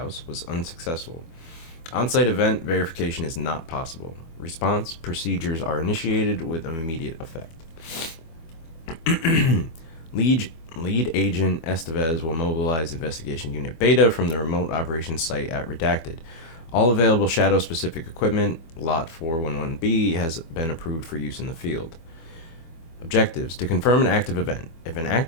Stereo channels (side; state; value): right; late; 24 ms